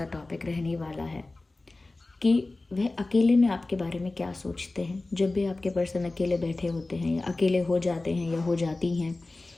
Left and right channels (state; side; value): quieter; right; 3.1 dB